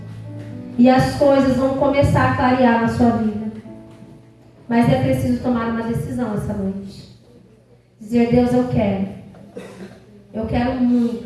E as coisas vão começar a clarear na sua vida. Mas é preciso tomar uma decisão essa noite. Dizer: Deus, eu quero. Eu quero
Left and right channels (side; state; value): both; identical; correlation 1.00